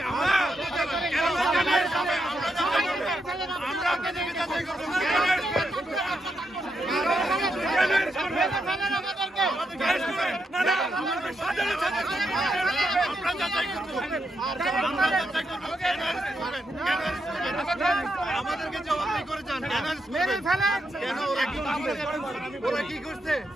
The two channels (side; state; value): both; normal; correlation 0.82